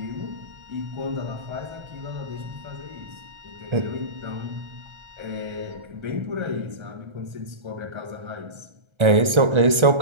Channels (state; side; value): late; left; 1.3 ms